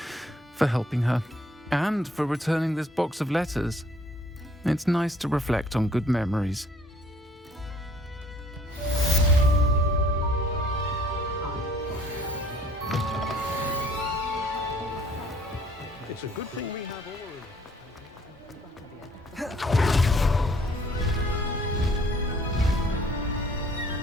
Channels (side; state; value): both; normal; correlation 0.59